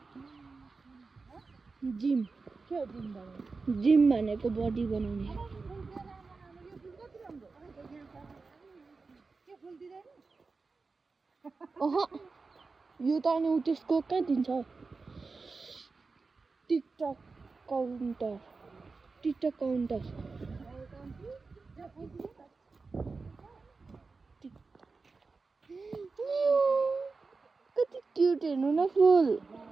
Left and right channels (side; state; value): left; quieter; 4.2 dB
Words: जिम भनेको बडी बनाउने। यो त अनि त्यसको कहाँ दिन्छ? TikTok counter. कति क्युट, हेर्नु न फुल।